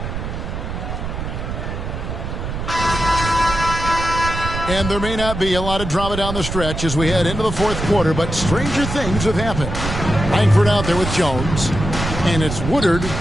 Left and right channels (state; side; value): noise; right; rumble, 5 dB below the sound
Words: And there may not be a lot of drama down the stretch as we head into the fourth quarter, but stranger things have happened. Langford out there with Jones, and it's Woodard